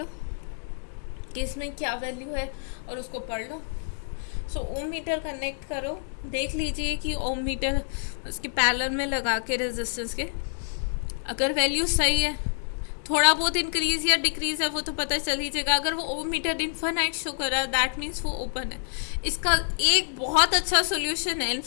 कि इसमें क्या वैल्यू है, और उसको पढ़ लो। सो ओम मीटर कनेक्ट करो, देख लीजिए कि ओम मीटर उसके पैरेलल में लगा के रेजिस्टेंस के, अगर वैल्यू सही है, थोड़ा बहुत इंक्रीज या डिक्रीज है वो तो पता चल ही जाएगा। अगर वो ओम मीटर इनफाइनाइट शो कर रहा है, दैट मीन्स वो ओपन है। इसका एक बहुत अच्छा सोल्यूशन है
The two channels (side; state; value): right; silent; 60 dB below the other